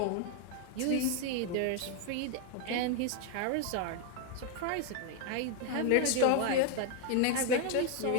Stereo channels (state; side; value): different; both; correlation 0.01